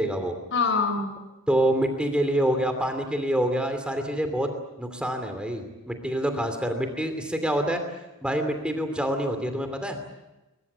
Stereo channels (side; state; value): both; normal; correlation 0.65